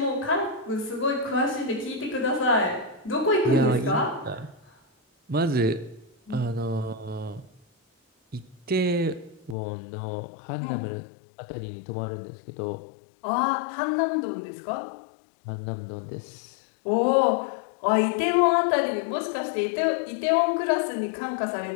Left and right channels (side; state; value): right; drops out; at 9.6 s